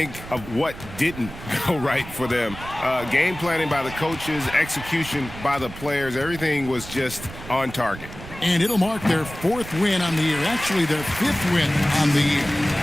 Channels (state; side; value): noise; right; rumble, 13 dB below the sound